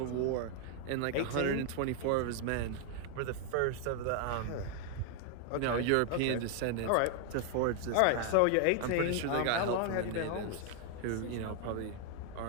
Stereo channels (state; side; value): different; both; correlation 0.00